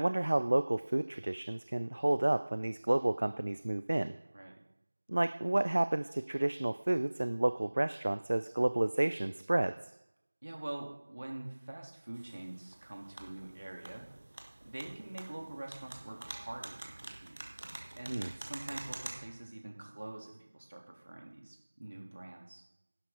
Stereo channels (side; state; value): both; inverted; correlation -1.00